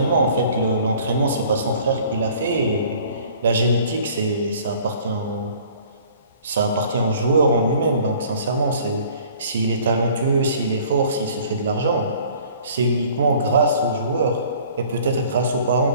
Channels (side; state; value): both; inverted; correlation -0.52